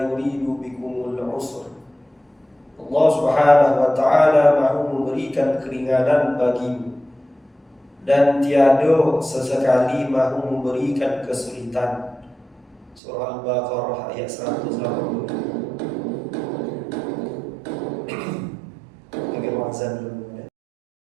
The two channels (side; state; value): left; drops out; at 13.0 s